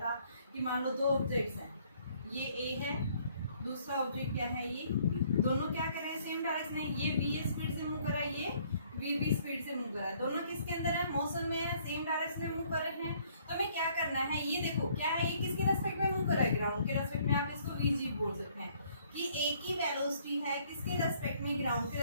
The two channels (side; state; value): both; inverted; correlation -0.63